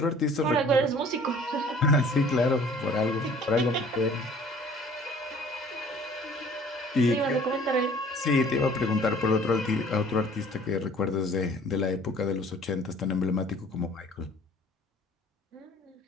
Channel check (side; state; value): both; normal; correlation 0.52